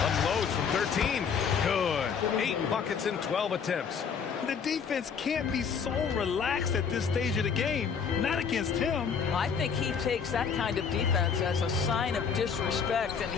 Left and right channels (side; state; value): right; quieter; 6.5 dB